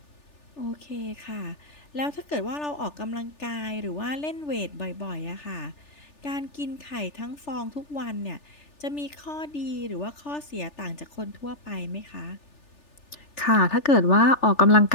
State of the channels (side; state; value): right; late; 3.4 ms